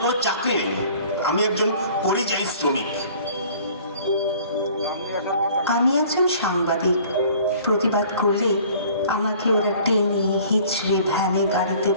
কোনো চাকরি নেই, আমি একজন পরিযায়ী শ্রমিক। আমি একজন সাংবাদিক। প্রতিবাদ করলে আমাকে ওরা টেনে হিচড়ে ভ্যানে গাড়িতে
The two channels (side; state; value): both; inverted; correlation -0.51